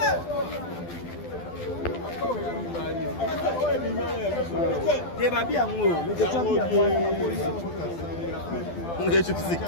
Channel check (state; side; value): late; right; 12 ms